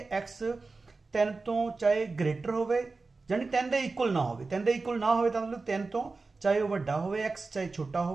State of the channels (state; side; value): quieter; left; 3.9 dB